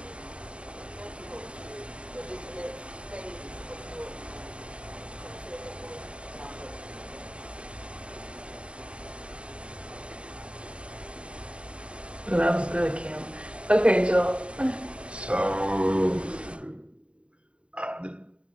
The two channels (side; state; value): left; late; 0.059 ms